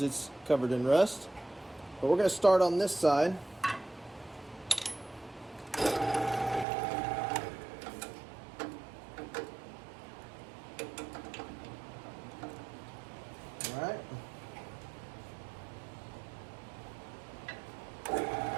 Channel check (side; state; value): left; drops out; at 6.7 s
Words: it's covered in rust, but we're going to start on this side. Alright.